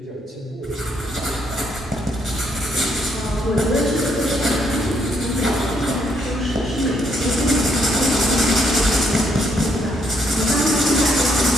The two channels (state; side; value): normal; both; correlation 0.72